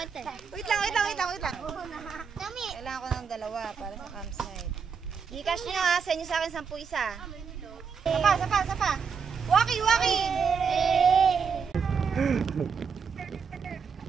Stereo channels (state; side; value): quieter; left; 6.1 dB